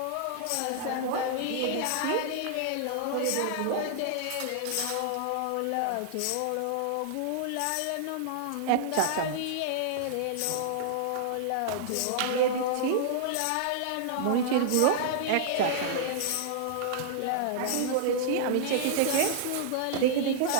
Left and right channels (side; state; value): both; different; correlation -0.01